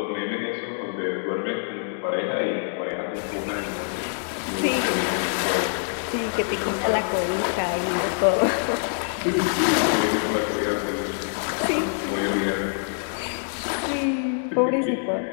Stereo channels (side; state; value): right; silent; digital silence